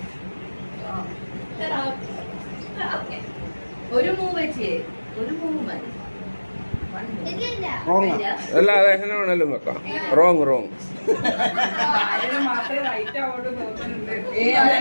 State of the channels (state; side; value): inverted; both; correlation -1.00